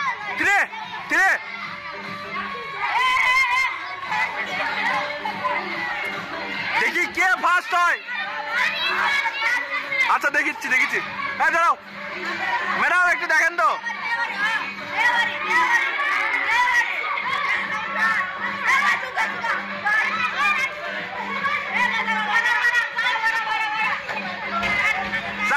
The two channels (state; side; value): identical; both; correlation 1.00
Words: 3 3। দেখি কে ফার্স্ট হয়। আচ্ছা দেখিচ্ছি দেখিচ্ছি। হ্যাঁ দাঁড়াও ম্যাডাম, একটু দেখেন তো।